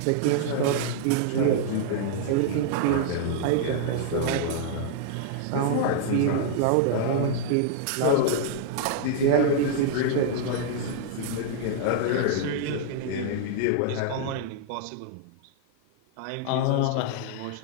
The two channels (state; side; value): different; both; correlation -0.01